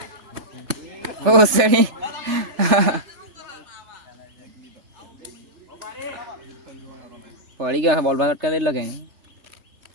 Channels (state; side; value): late; left; 3.4 ms